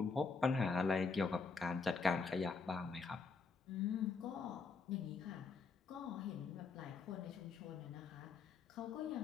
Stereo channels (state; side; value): quieter; right; 4.6 dB